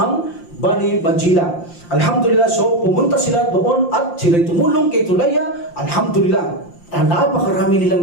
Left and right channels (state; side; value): late; right; 5.8 ms